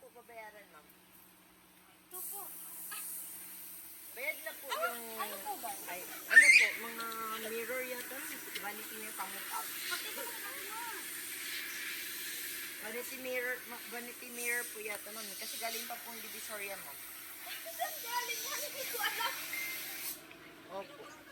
babayaran, ma'am. 2-4. Bayad na po yung... Ano po ba? Ay, ano po, mga mirror yata. Vanity mirror pang-up. Pakita mo naman mo. Vanity mirror po yata, ma'am. Kasi galing pa pong Divisoria, ma'am. Ay, saan galing yan? Hindi ko alam. Opo.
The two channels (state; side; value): identical; both; correlation 1.00